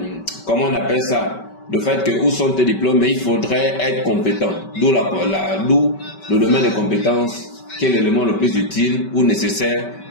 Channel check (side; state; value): right; late; 5.2 ms